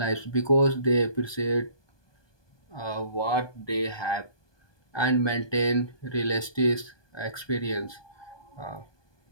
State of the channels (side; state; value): right; late; 1.2 ms